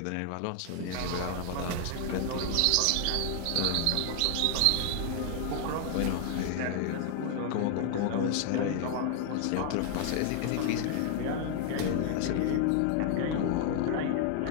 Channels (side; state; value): both; different; correlation 0.00